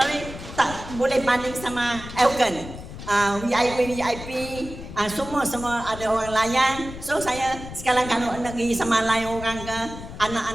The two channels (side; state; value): left; noise; rumble, 12 dB below the sound